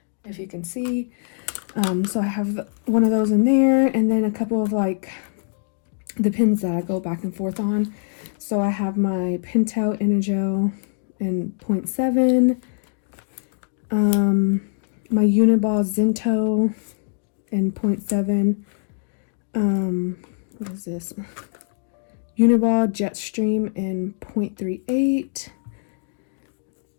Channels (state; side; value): silent; right; digital silence